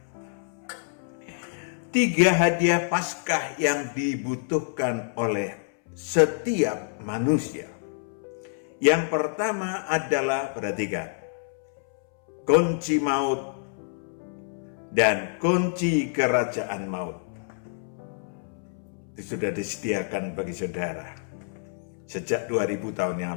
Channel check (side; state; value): right; silent; 60 dB below the other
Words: 3 hadiah Paskah yang dibutuhkan oleh setiap manusia. Yang pertama adalah, perhatikan, kunci maut dan kunci kerajaan maut. Itu sudah disediakan bagi saudara sejak 2000 tahun yang